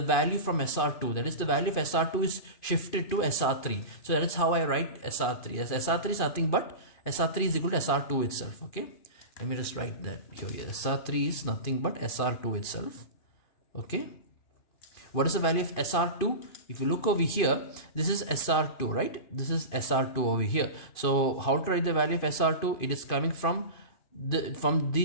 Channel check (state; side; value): late; right; 2.5 ms